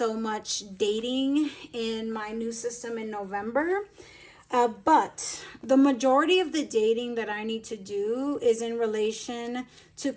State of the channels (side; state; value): both; identical; correlation 1.00